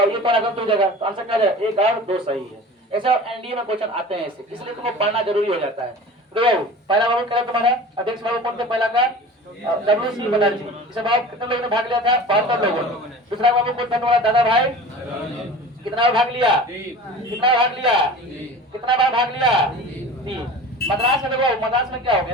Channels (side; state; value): both; normal; correlation 0.38